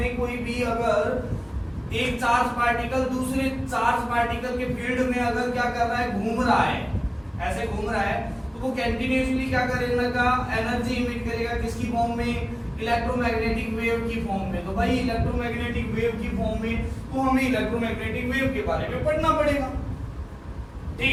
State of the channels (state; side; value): identical; both; correlation 1.00